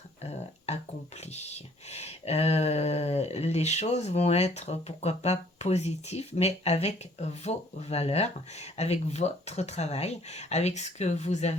accomplies. les choses vont être, pourquoi pas, positives, mais avec vos valeurs, avec votre travail, avec ce que vous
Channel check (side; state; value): both; normal; correlation 0.59